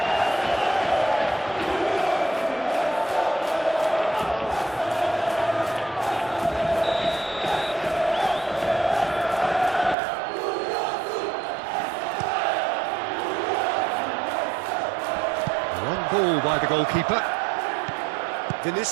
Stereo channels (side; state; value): left; drops out; at 10.0 s